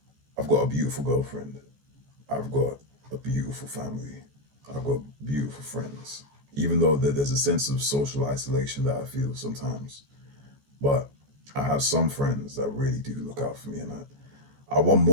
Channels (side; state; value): left; late; 14 ms